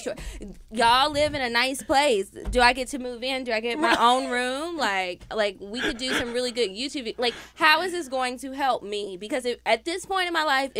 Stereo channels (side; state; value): both; identical; correlation 1.00